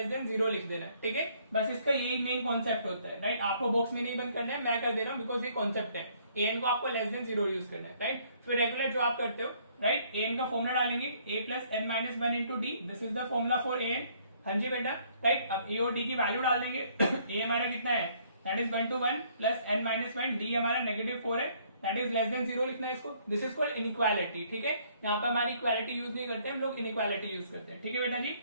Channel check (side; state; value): both; inverted; correlation -0.64